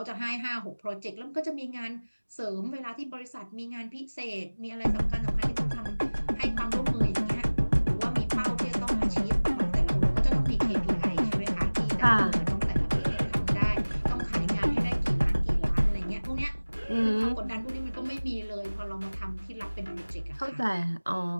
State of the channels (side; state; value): both; inverted; correlation -1.00